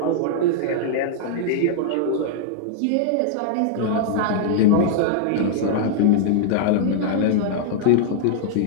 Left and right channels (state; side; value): different; both; correlation -0.01